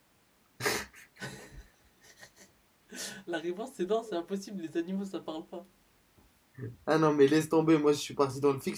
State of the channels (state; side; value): identical; both; correlation 1.00